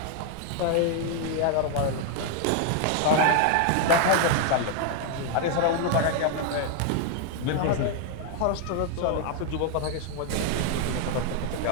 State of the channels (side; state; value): both; different; correlation 0.00